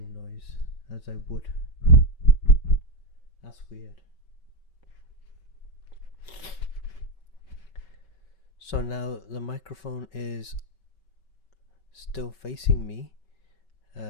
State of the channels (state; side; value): late; right; 5.3 ms